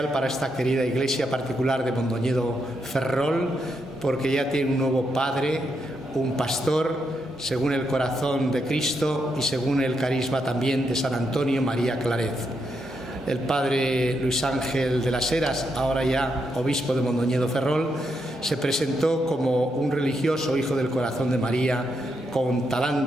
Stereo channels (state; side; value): normal; both; correlation 0.81